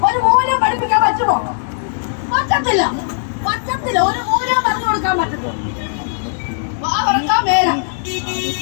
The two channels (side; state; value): right; silent; digital silence